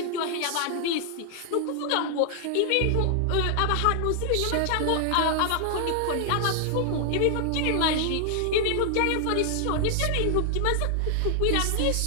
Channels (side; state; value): both; different; correlation 0.00